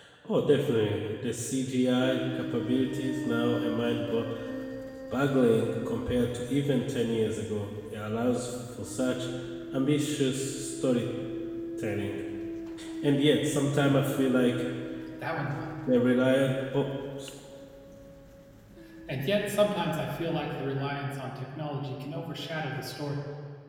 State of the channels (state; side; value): identical; both; correlation 1.00